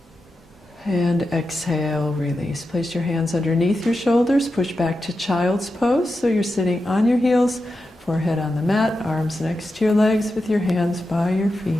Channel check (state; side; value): normal; both; correlation 0.90